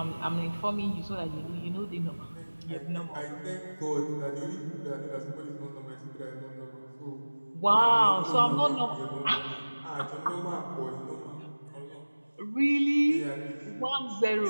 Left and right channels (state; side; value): inverted; both; correlation -1.00